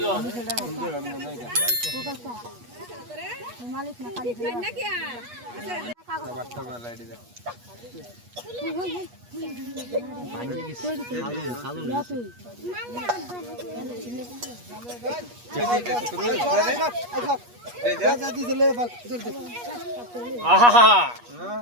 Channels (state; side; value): late; left; 8.3 ms